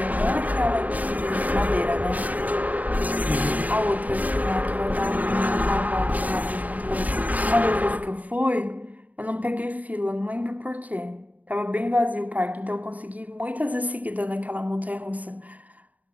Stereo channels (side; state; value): left; late; 0.074 ms